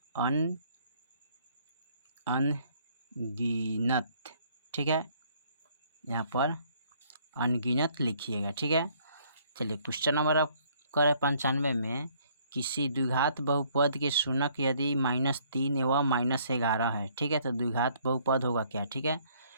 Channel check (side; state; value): both; inverted; correlation -0.63